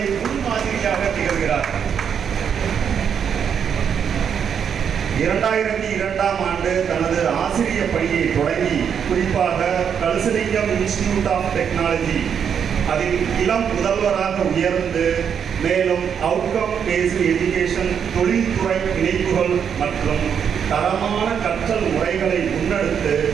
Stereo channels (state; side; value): quieter; left; 7.7 dB